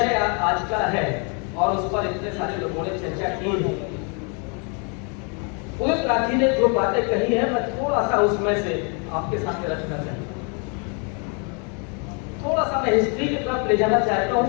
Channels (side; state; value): right; quieter; 36.4 dB